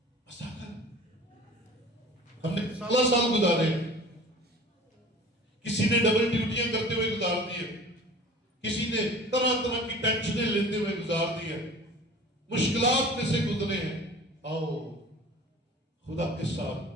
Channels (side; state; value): both; normal; correlation 0.43